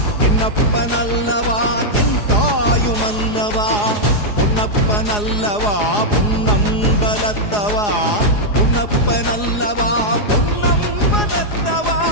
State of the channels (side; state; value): right; late; 4.8 ms